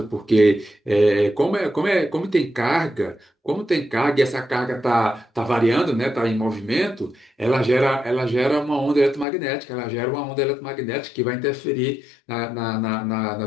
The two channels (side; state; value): right; drops out; at 9.2 s